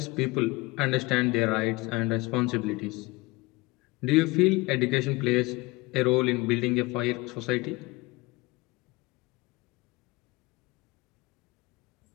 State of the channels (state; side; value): quieter; right; 22.8 dB